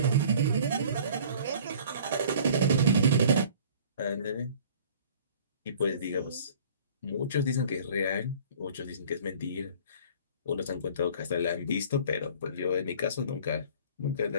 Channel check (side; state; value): both; inverted; correlation -0.49